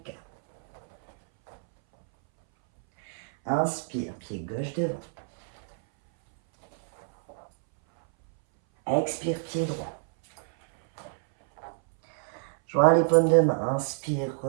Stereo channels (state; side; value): silent; left; 60 dB below the other